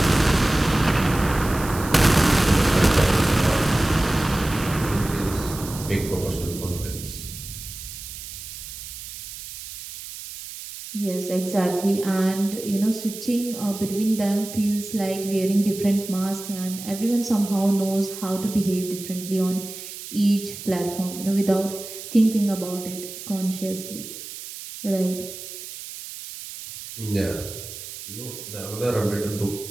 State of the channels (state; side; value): noise; right; hiss, 11 dB below the sound